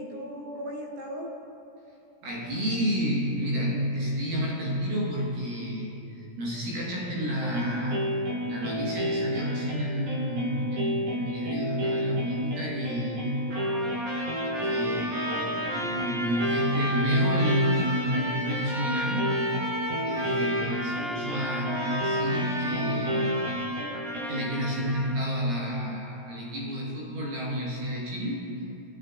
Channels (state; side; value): late; left; 17 ms